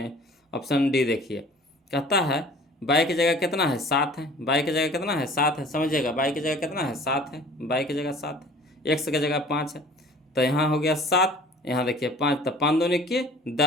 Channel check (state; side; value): normal; both; correlation 0.48